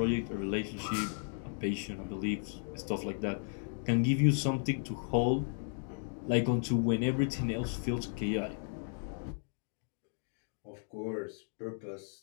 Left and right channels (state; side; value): silent; right; digital silence